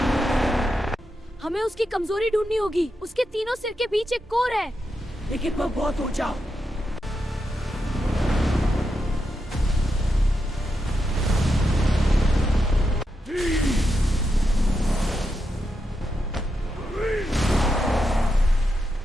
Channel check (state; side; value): normal; both; correlation 0.86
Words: हमें उसकी कमजोरी ढूंढनी होगी। उसके तीनों सिर के बीच एक कोर है, लेकिन वह बहुत ऊंचा।